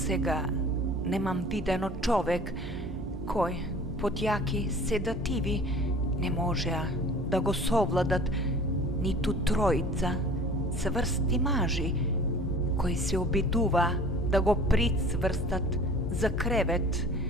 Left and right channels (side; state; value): both; normal; correlation 0.46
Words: немам видено човек кој под јаки седативи не можеа да го совладат ниту тројца цврсти мажи кои се обидува да го прицврстат за кревет,